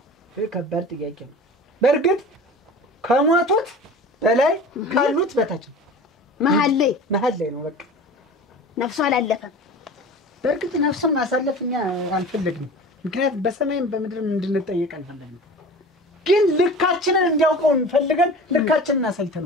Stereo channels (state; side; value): normal; both; correlation 0.38